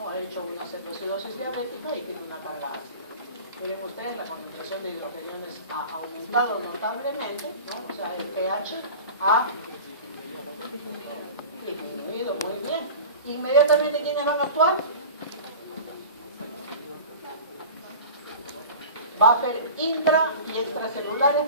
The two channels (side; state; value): both; inverted; correlation -0.36